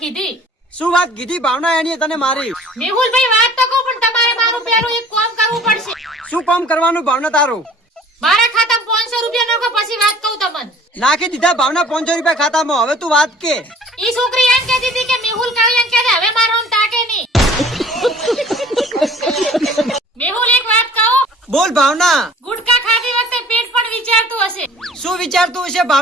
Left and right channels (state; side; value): normal; both; correlation 0.49